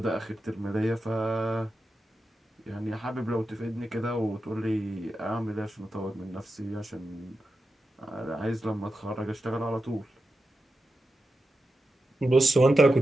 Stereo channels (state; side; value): normal; both; correlation 0.90